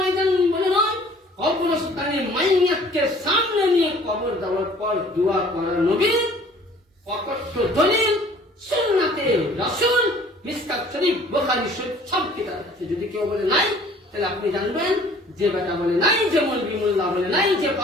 বলে নয়, কবরস্থানে মাইয়াতকে সামনে নিয়ে কবর দেওয়ার পর দোয়া করা নবী অকথ্য দলিল সুন্নাতে রাসূল, মিশকাত শরীফ, বুখারী শরীফ সব কিতাবে আছে। যদি কেউ বলে নাই, তাহলে আপনি জানবেন যে বেটা বলে নাই, যে মৌলভী মোল্লা বলে নাই, যে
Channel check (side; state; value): both; normal; correlation 0.53